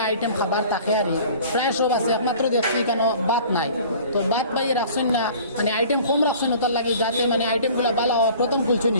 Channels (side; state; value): both; inverted; correlation -0.47